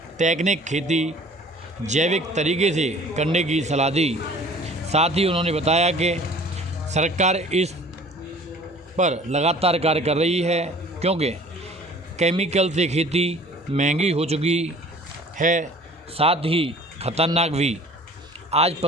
तकनीक खेती जैविक तरीके से करने की सलाह दी। साथ ही उन्होंने बताया कि सरकार इस पर लगातार कार्य कर रही है, क्योंकि केमिकल से खेती महंगी हो चुकी है, साथ ही खतरनाक भी। आज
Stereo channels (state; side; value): normal; both; correlation 0.49